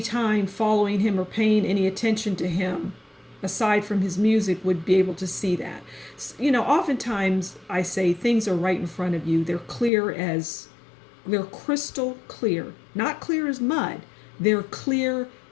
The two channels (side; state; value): right; drops out; at 9.9 s